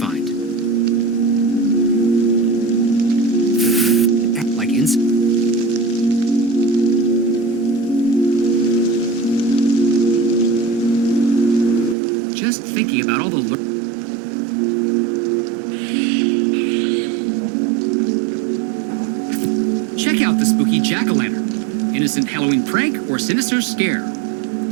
Like incense? Just thinking about all the Check out the spooky jack-o'-lantern. Innocent Halloween prank or sinister scare?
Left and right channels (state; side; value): drops out; left; at 12.0 s